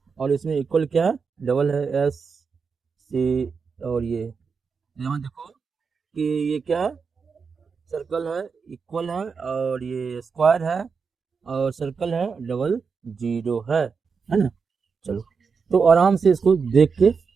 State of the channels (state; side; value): quieter; left; 5.5 dB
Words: और इसमें इक्वल क्या है? डबल है, एस सी। और ये यहाँ देखो कि ये क्या है? सर्कल है, इक्वल है, और ये स्क्वायर है, और सर्कल है, डबल जीरो है ना। चलो, तो आराम से इसको देख के,